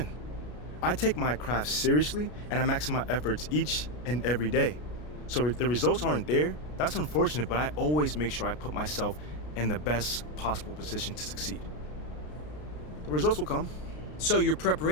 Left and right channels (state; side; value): late; right; 33 ms